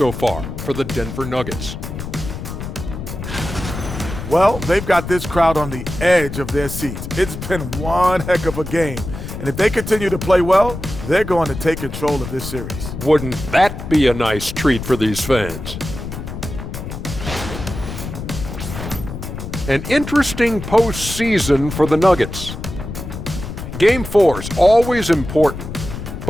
far for the Denver Nuggets. Well, they've got this crowd on the edge of their seats. It's been one heck of a game. And if they continue to play well, they're going to take control of this series. Wouldn't that be a nice treat for these fans? An interesting postseason for the Nuggets. Game 4 is always important.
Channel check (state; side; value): noise; left; rumble, 8 dB below the sound